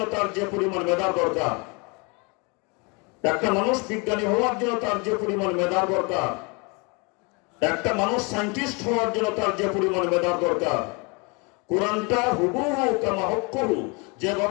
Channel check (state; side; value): quieter; right; 30.6 dB